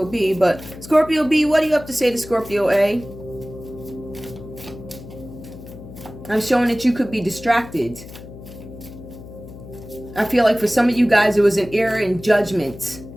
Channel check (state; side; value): noise; left; hum, 15 dB below the sound